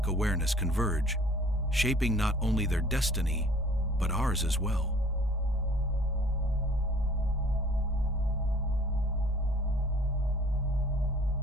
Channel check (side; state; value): both; normal; correlation 0.53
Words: awareness converge, shaping not only their destiny, but ours as well.